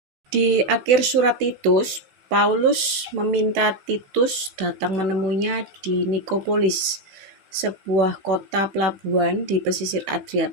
Di akhir surat Titus, Paulus meminta Titus datang menemuinya di Nikopolis, sebuah kota pelabuhan di pesisir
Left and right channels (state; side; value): late; left; 16 ms